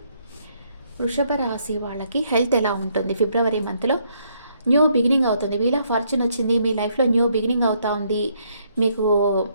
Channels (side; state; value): both; inverted; correlation -0.71